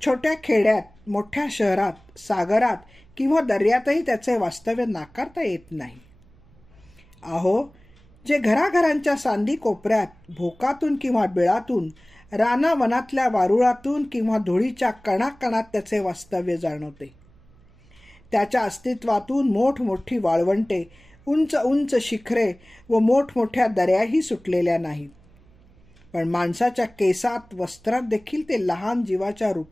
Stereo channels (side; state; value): right; noise; hum, 28 dB below the sound